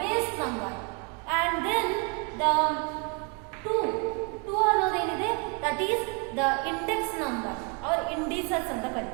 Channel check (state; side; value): quieter; left; 32.8 dB